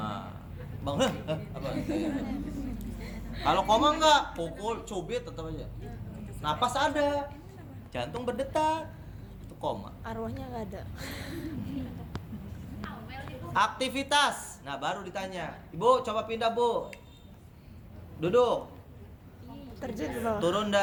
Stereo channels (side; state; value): both; identical; correlation 1.00